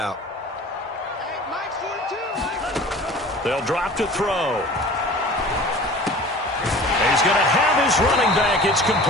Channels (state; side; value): normal; both; correlation 0.42